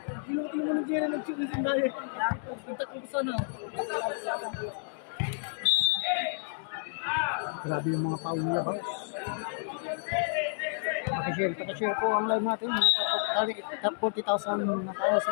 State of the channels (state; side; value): silent; right; digital silence